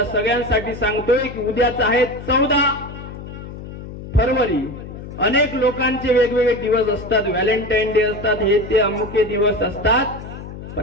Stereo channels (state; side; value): noise; left; hum, 12 dB below the sound